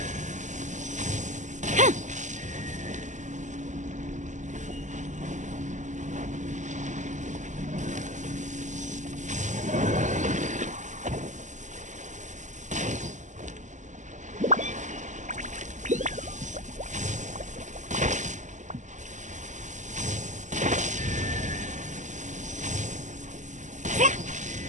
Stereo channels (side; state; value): left; late; 0.35 ms